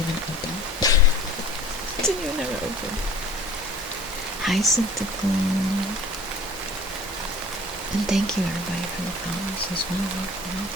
even open. Didn't even have it open. Hi, Syntacle. And thank you everybody for the follows as well.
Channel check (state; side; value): normal; both; correlation 0.46